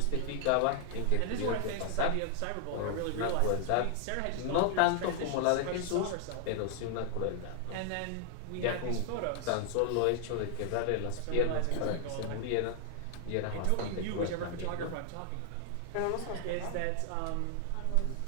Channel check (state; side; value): different; both; correlation 0.00